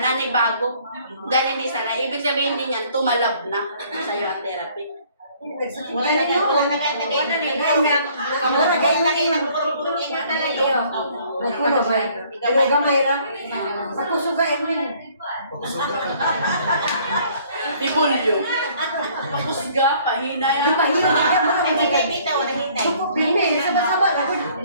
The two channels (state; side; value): inverted; both; correlation -0.59